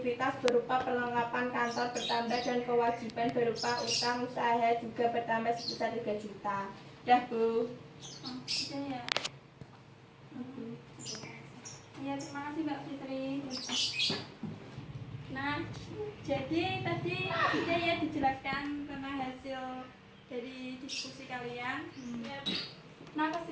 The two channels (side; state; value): both; identical; correlation 1.00